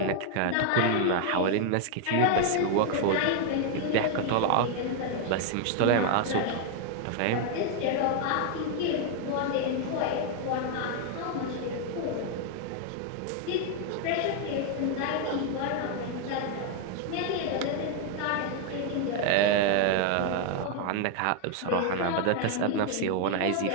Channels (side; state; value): both; different; correlation 0.00